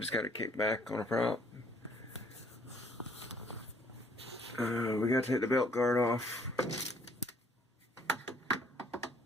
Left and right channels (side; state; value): both; normal; correlation 0.62